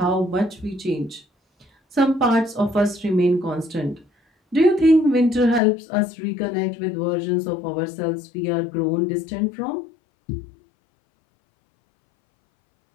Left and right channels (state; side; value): drops out; right; at 5.6 s